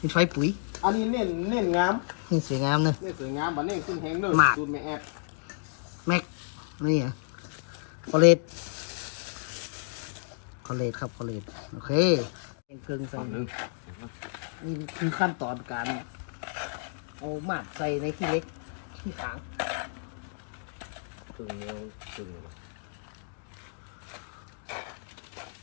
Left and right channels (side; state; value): right; silent; digital silence